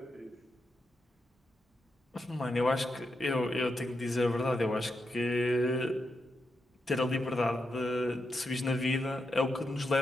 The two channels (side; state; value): both; normal; correlation 0.85